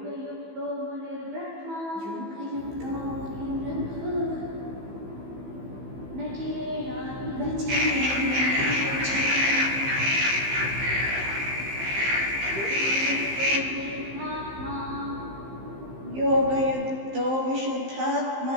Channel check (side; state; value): left; late; 15 ms